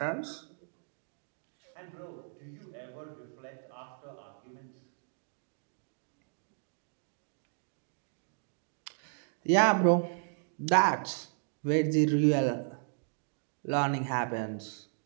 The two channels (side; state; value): left; silent; digital silence